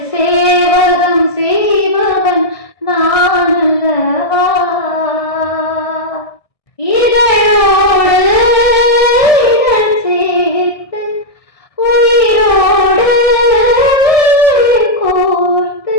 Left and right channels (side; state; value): right; late; 1.6 ms